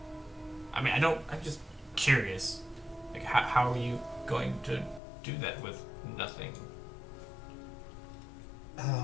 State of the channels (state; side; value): drops out; right; at 5.0 s